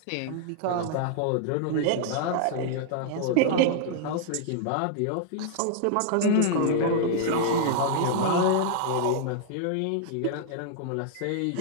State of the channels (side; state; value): both; different; correlation -0.01